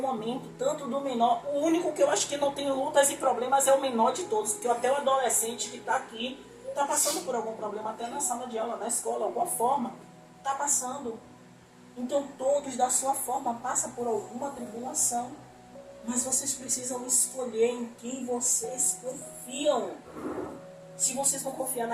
momento, tanto do menor. O único que eu acho que não tem lutas e problemas é o menor de todos, porque até o adolescente que está aqui está passando por algum problema, até na sala de aula, na escola, alguma forma, está passando. Então todos da sua forma passam por alguma tribulação, mas vocês precisam escolher em quem vocês confiam. Se vocês vão confiar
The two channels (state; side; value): identical; both; correlation 1.00